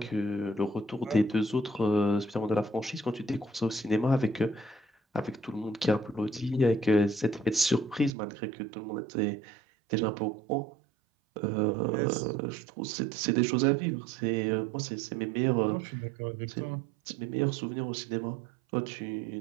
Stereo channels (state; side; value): drops out; left; at 8.1 s